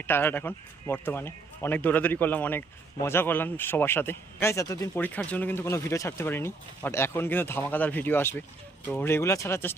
টায়ার্ড এখন বর্তমানে, অনেক দৌড়াদৌড়ি করলাম, অনেক মজা করলাম সবার সাথে। গাইস, এতদিন পরীক্ষার জন্য কিন্তু কোনো ভিডিও ছাড়তে পারিনি, বাট এখন কিন্তু ধামাকাদার ভিডিও আসবে, তো রেগুলার ছাড়ার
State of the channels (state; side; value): quieter; left; 3.7 dB